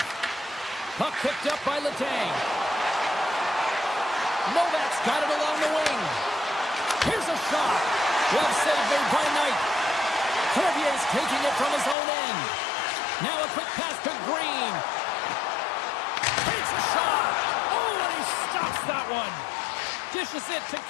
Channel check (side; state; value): right; drops out; at 12.0 s